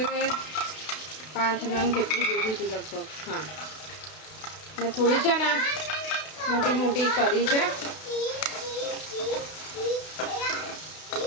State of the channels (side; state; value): right; late; 32 ms